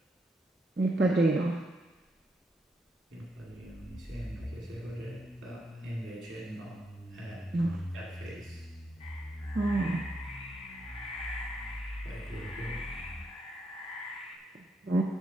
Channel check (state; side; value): normal; both; correlation 0.79